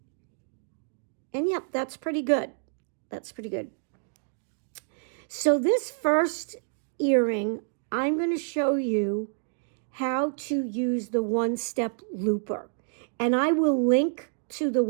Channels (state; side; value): silent; left; digital silence